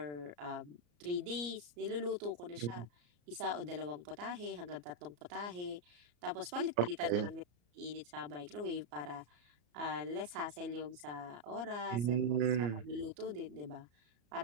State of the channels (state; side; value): late; left; 34 ms